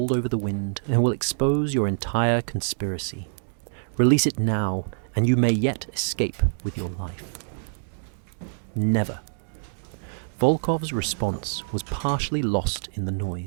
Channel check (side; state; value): left; silent; digital silence